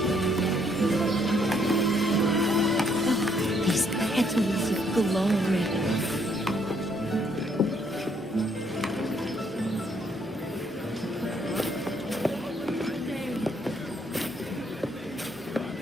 These petals of glory.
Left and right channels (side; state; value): both; normal; correlation 0.69